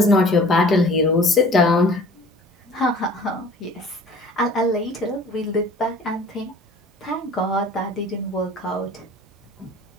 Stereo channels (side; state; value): both; normal; correlation 0.47